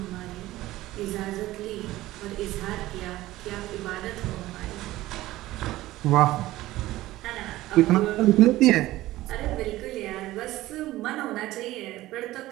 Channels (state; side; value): quieter; left; 16.6 dB